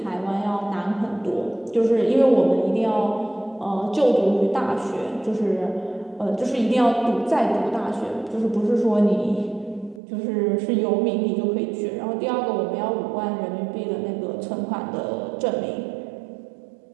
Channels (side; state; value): left; drops out; at 10.0 s